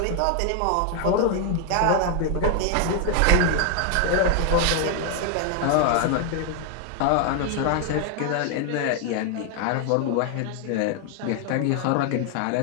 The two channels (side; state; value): both; different; correlation 0.00